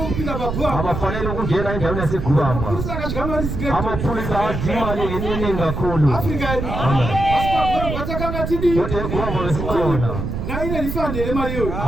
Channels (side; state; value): right; noise; rumble, 4 dB below the sound